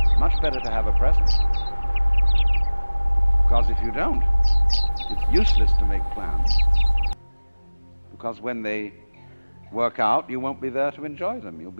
Much better to have a present. Because if you don't, it's useless to make plans. Because when they work out, you won't be there to enjoy them. You'll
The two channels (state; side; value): inverted; both; correlation -1.00